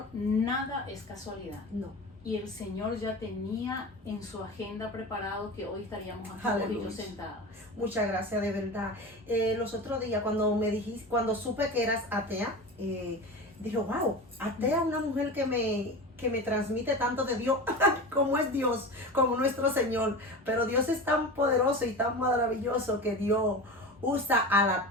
nada es casualidad. No. Y el Señor ya tenía en su agenda preparado que hoy estaríamos aquí y yo sentadas. Muchas gracias, de verdad. Los otros días cuando supe que eras atea, dije, wow, atea, una mujer que me transmite tanto de Dios, como es Dios, como nuestro Señor. Pero Dios es tan poderoso y tan maravilloso que dio usa al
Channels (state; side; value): normal; both; correlation 0.29